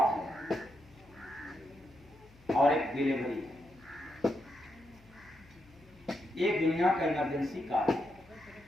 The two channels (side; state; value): left; noise; hum, 25 dB below the sound